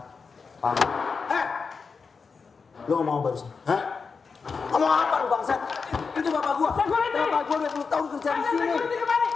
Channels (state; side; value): quieter; right; 5.1 dB